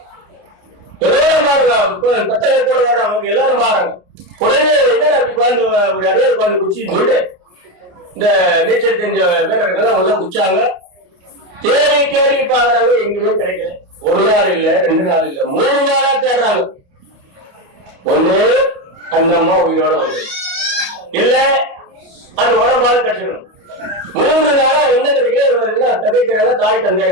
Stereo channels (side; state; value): left; late; 29 ms